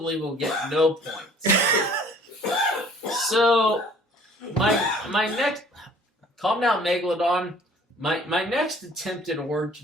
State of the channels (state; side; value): normal; both; correlation 0.54